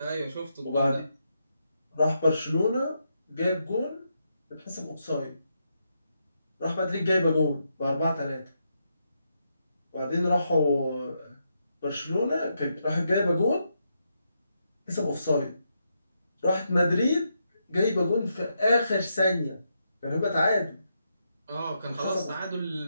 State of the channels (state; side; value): inverted; both; correlation -0.82